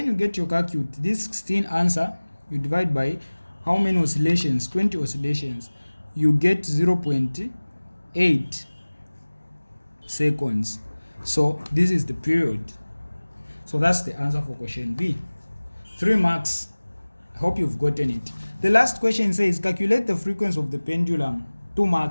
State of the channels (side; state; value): both; inverted; correlation -1.00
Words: you get your calculate, this 16 answer, you divide by how many oscillations, 20 oscillations, you get 0.8 seconds. So this is the period. So that's the answer for question B. 3 marks. I hope you've gotten it. The last question says calculate the frequency of the pendulum. 2